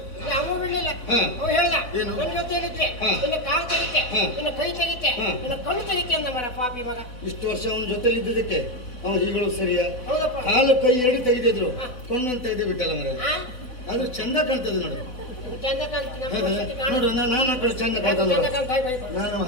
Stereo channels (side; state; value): right; late; 4.0 ms